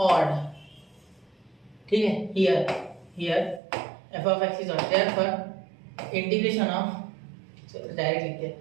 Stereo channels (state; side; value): drops out; left; at 3.6 s